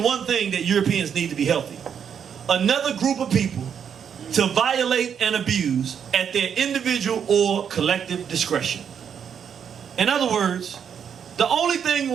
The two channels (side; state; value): left; quieter; 7.8 dB